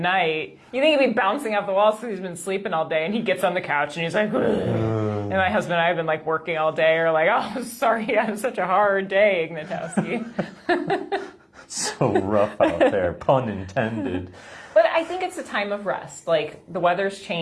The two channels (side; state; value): both; identical; correlation 1.00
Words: you think he'd be bouncing off the walls because he's been sleeping all day, and he gets on the couch and he's like, and my husband and I have been like working all day, or like, oh, sorry, I had such a hard day, Ignatowski. So rough out there, pun intended. But I think it's a time of rest. Like, the weather's